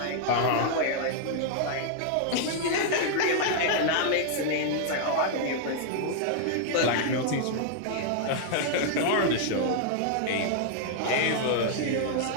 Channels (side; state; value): both; different; correlation -0.01